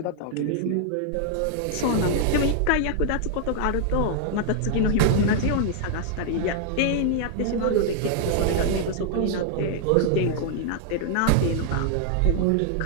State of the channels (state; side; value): different; both; correlation 0.00